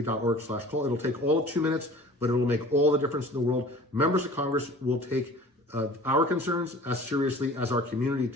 It'll take all of 2 minutes, but it will make all the difference in the world. Members of Congress will take our concerns as seriously as our community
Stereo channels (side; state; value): both; normal; correlation 0.45